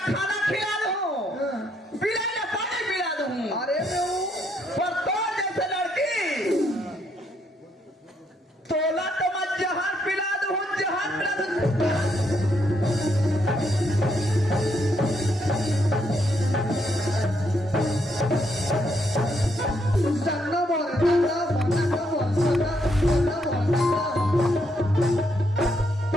खाना खिला दूं, बिलाई का पानी पिला दूं। अरे मैं हूँ पर तो जैसे लड़की तोला तो मैं जहान पिला दूं, जहान पिला दूं। सन्ना बोल सन्ना बोल सन्ना बोल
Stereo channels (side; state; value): both; normal; correlation 0.75